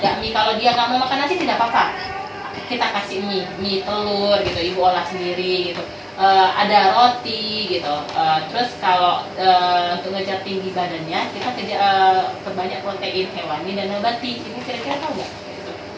mie. Kalau dia nggak mau makan nasi tidak apa-apa, kita kasih mie telur gitu, ibu olah sendiri gitu. Ada roti gitu. Terus kalau untuk ngejar tinggi badannya, kita perbanyak protein hewani dan nabati. Ibu kira-kira tahu nggak?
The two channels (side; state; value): both; identical; correlation 1.00